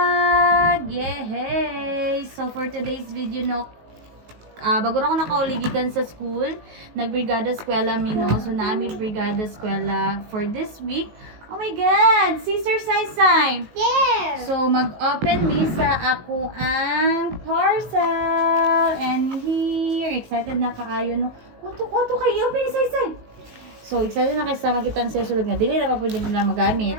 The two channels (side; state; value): left; late; 18 ms